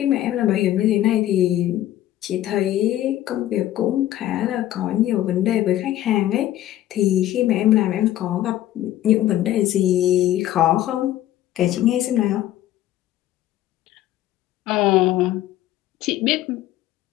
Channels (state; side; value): quieter; right; 13.5 dB